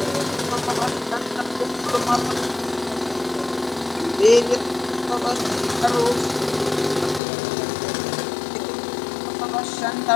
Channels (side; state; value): right; drops out; at 7.2 s